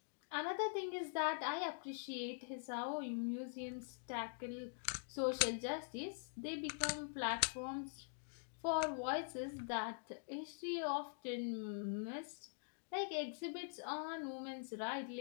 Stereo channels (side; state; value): right; silent; digital silence